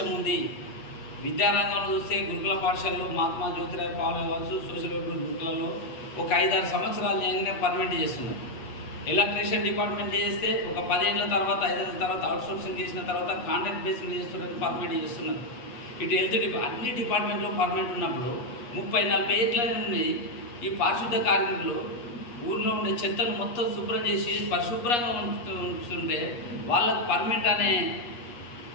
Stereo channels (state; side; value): late; right; 8.4 ms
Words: ఉంది. విద్యారంగంలో చూస్తే గురుకుల పాఠశాలలో మహాత్మా జ్యోతిరావు పాలే కావచ్చు, సోషల్ వెల్ఫేర్ గురుకులలో ఒక 5-6 సంవత్సరాలు చేయగానే పర్మనెంట్ చేస్తున్నారు. ఎలక్ట్రీషియన్ డిపార్ట్మెంట్ చేస్తే ఒక 10 ఏళ్ళ తర్వాత 5 ఏళ్ళ తర్వాత అవుట్సోర్సింగ్ చేసిన తర్వాత కాంట్రాక్ట్ బేస్ మీద చేస్తున్నారు, పర్మనెంట్ చేస్తున్నారు. ఇటు హెల్త్ అన్ని డిపార్ట్మెంట్లో పర్మనెంట్ ఉన్నప్పుడు 30-40 ఏళ్ళ నుండి ఈ పారిశుద్ధ కార్మికులు ఊరిలో ఉండే చెత్తను మొత్తం శుభ్రం చేసి పరిశుభ్రంగా ఉంటుంటే వాళ్ళకు పర్మనెంట్ అనే